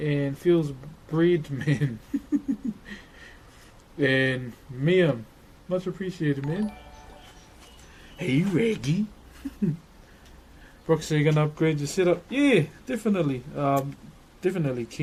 Feels Breed Man. And Miam. Much appreciated, man. Hey, Reggie. Broxh, are you gonna upgrade your setup? Yeah, definitely. Definitely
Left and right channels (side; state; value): both; identical; correlation 1.00